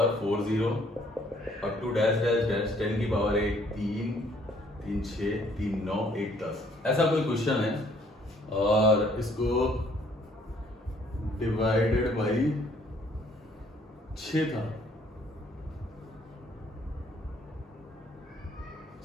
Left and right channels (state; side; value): normal; both; correlation 0.63